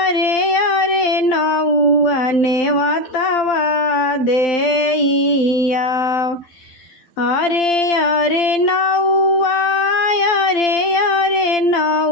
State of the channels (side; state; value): right; late; 12 ms